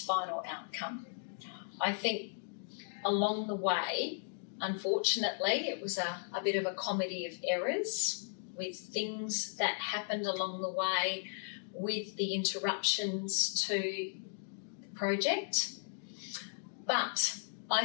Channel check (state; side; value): silent; right; digital silence